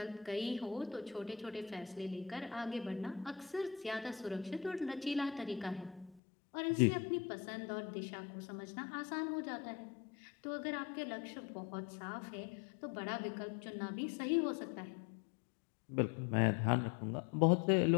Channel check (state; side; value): drops out; right; at 6.2 s